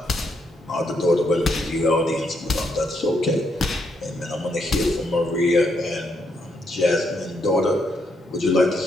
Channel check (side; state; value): both; normal; correlation 0.77